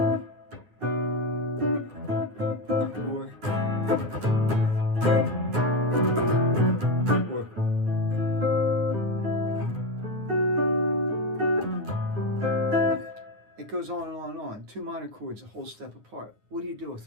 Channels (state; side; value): late; left; 9.6 ms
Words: Or it goes on and on and on. Two minor chords a whole step apart. What do you do with